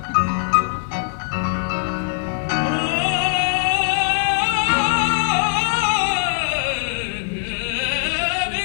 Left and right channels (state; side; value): silent; right; digital silence